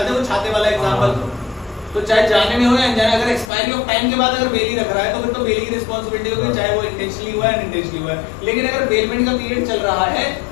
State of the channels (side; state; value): right; drops out; at 3.5 s